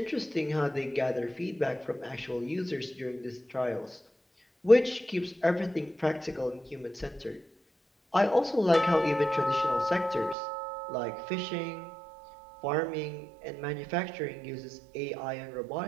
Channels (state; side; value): drops out; left; at 10.4 s